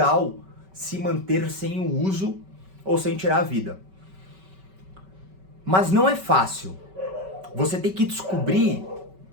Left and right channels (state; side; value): late; left; 5.2 ms